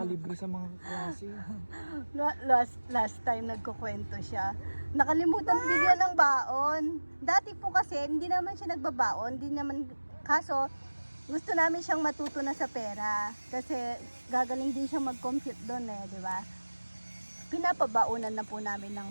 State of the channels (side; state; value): both; inverted; correlation -1.00